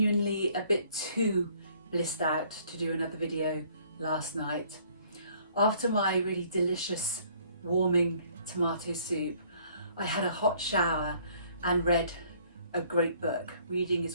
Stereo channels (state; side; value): inverted; both; correlation -0.60